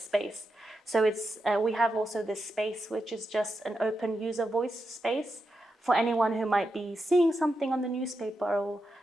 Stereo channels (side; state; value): both; normal; correlation 0.87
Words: So it's we have also this space, which is just an open user voice space for anyone who might be seeing something on the newspaper or